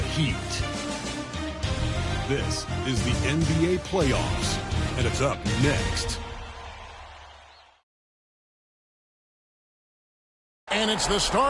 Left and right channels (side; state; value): both; identical; correlation 1.00